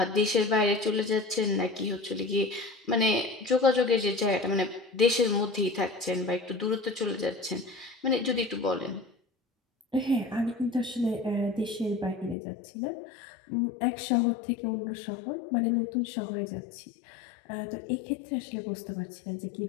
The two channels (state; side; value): drops out; right; at 12.4 s